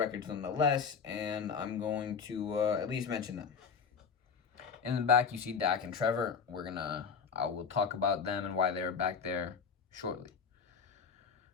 nonetheless, and I'm going to at least mention them. In the back, you see Dak and Trevor. I will talk about them and why they're back there shortly.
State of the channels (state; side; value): quieter; right; 6.0 dB